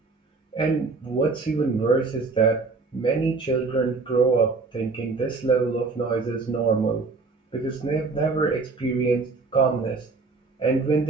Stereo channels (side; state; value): left; quieter; 4.1 dB